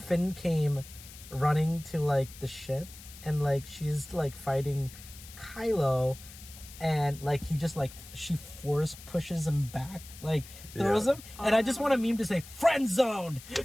came running to like the ship and like she's like fighting Kylo. And like he just like she force pushes him back, like throws him, and I just want a meme to say "friend zoned" because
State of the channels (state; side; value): noise; left; hiss, 17 dB below the sound